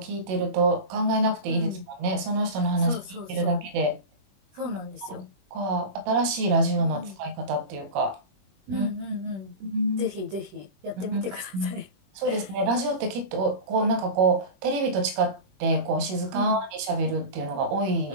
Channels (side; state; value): left; late; 21 ms